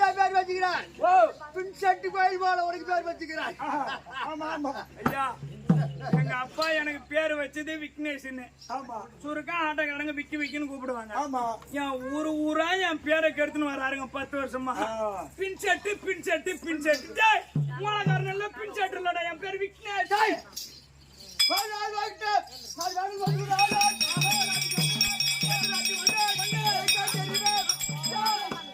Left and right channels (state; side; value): identical; both; correlation 1.00